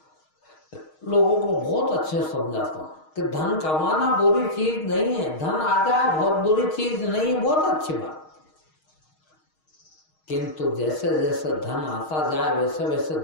लोगों को बहुत अच्छे समझाता हूं कि धन कमाना बुरी चीज नहीं है, धन आ जाए बहुत बुरी चीज नहीं है, बहुत अच्छी बात। किंतु जैसे जैसे धन आता जाए वैसे वैसे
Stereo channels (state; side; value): late; right; 6.4 ms